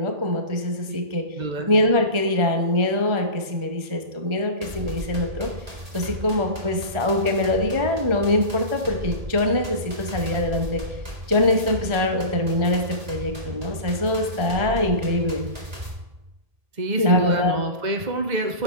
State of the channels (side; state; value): left; late; 1.4 ms